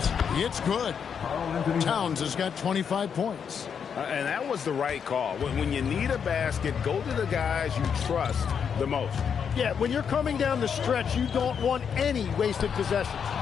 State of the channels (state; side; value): quieter; right; 7.1 dB